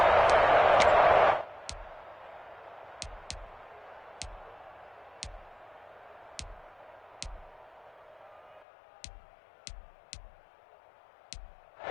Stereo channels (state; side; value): drops out; right; at 8.7 s